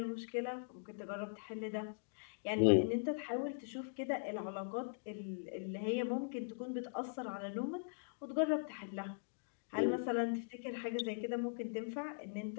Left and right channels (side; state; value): right; silent; digital silence